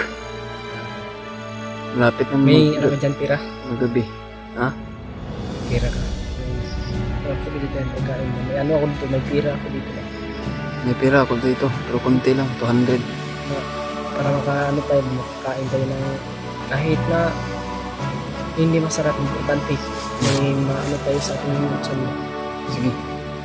Malapit na May ano ka dyan, pira? magabi. Ha? Pira ka. May dito yung pagkain mo. May ano ako dito, may pira ako dito. May pera ako dito, pero konti lang, 200. Para makaano tayo, makakain tayo ng kahit na hindi masarap, importante. May maano tayo sa ating minsan. Sige,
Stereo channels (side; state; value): both; identical; correlation 1.00